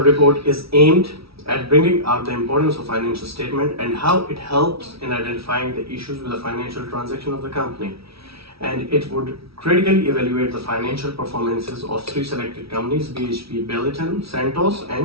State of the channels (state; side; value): late; left; 0.76 ms